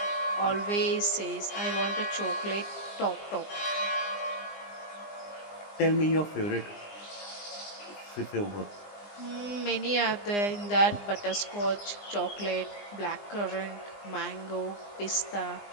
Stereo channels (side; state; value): right; late; 20 ms